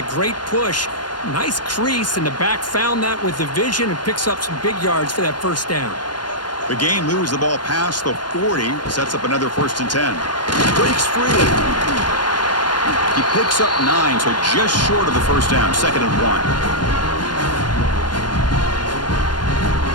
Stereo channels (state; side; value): late; right; 0.71 ms